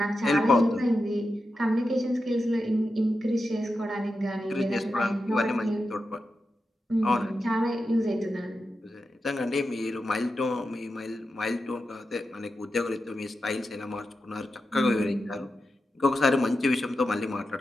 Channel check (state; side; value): normal; both; correlation 0.90